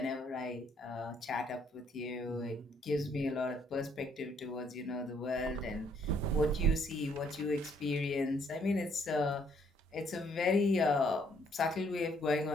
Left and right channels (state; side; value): normal; both; correlation 0.67